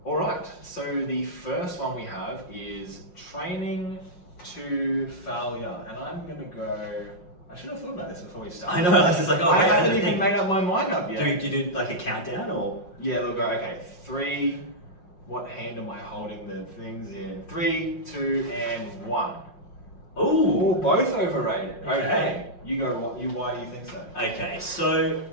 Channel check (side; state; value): right; late; 5.6 ms